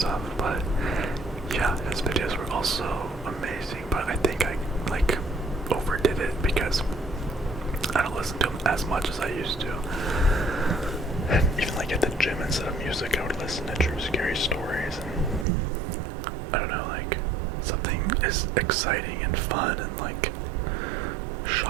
but yeah, his videos were also amazing, but I think I like overdid it because I don't listen to him as much as I used to. And even like at the gym, instead of music, I would listen to true scary stories. And I don't know, like, something is exciting and fun and like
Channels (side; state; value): left; drops out; at 15.5 s